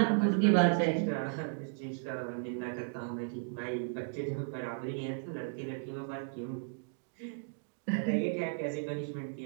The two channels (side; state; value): left; silent; digital silence